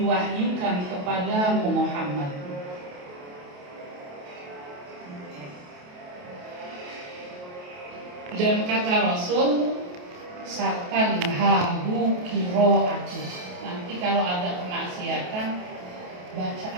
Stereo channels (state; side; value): late; left; 28 ms